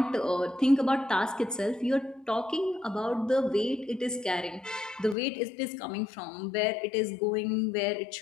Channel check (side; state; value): right; drops out; at 5.2 s